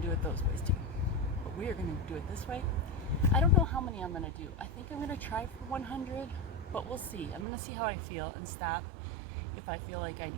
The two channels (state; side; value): drops out; left; at 7.5 s